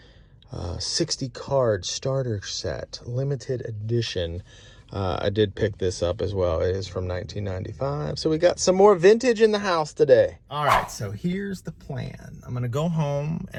60 card starter set, limited edition. I did pick this up as well. It is from 1995. So we got some more vintage in the house today. All right, so here's the plan. I'm going to go home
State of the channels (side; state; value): both; identical; correlation 1.00